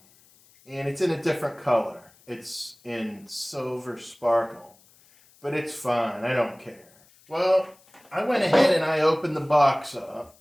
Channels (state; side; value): noise; left; hiss, 29 dB below the sound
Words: And it's in a different color. It's in silver sparkle, but it's fine, I don't care. Well, I went ahead and I opened the box up.